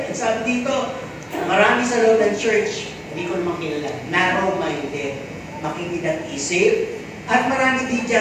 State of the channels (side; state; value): both; identical; correlation 1.00